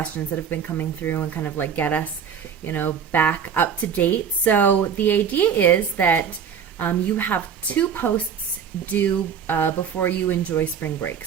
that have been coming through and kind of like get us back up to date. So the idea is that you have 2 posts due before you enjoy spring break.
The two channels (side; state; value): left; quieter; 7.4 dB